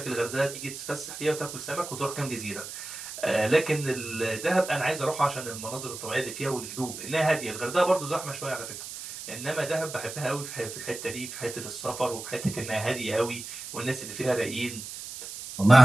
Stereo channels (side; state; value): right; noise; hiss, 10 dB below the sound